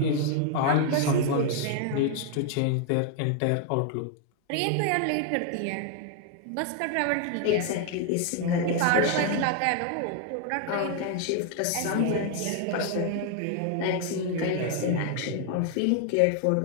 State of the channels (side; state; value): both; different; correlation 0.00